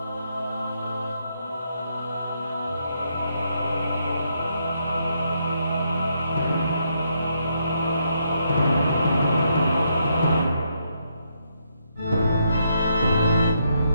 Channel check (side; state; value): both; inverted; correlation -0.77